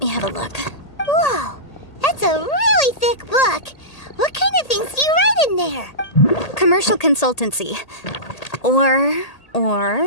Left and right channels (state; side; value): late; right; 1.8 ms